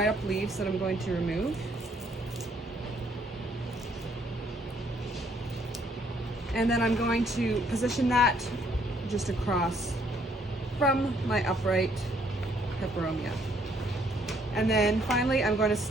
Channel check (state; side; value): normal; both; correlation 0.67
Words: up leaves that I'm going to remove. And then I'm going to position that just across from my upright peperomia. And then finally I'm going to